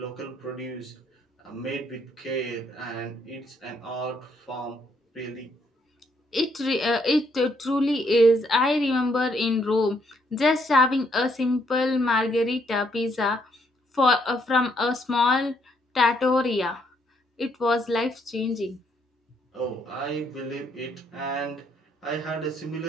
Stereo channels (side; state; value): both; normal; correlation 0.71